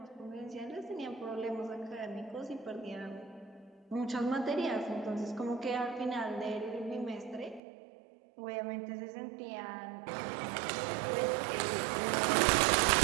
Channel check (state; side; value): drops out; left; at 7.6 s